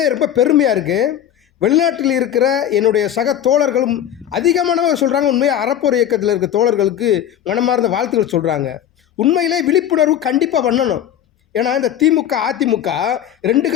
ரொம்ப பெருமையாக இருக்குது. வெளிநாட்டில் இருக்கிற என்னுடைய சக தோழர்களும் அதிகமானவர் சொல்கிறாங்க, உண்மையாக அறப்போர் இயக்கத்தில் இருக்க தோழர்களுக்கு மனமார்ந்த வாழ்த்துக்கள் சொல்கிறாங்க. உண்மையிலே விழிப்புணர்வு கண்டிப்பாக பண்ணணும். ஏன்னா இந்த திமுக அதிமுக ரெண்டு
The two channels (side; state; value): right; quieter; 10.5 dB